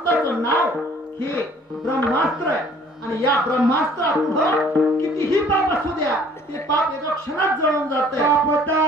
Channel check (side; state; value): both; normal; correlation 0.55